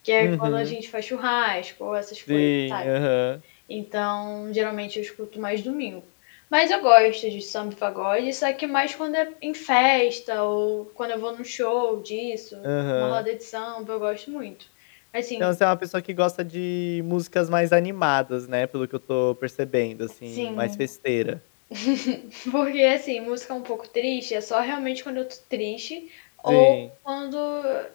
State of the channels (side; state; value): right; silent; digital silence